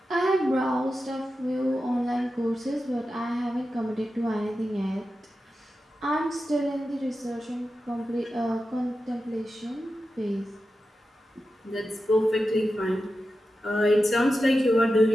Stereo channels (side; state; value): both; normal; correlation 0.91